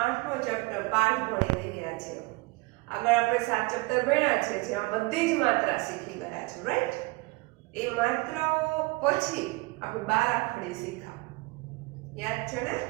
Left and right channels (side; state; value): left; quieter; 24.4 dB